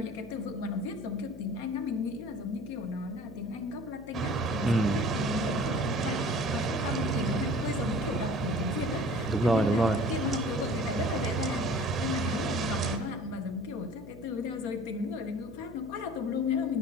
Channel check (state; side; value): noise; left; hum, 17 dB below the sound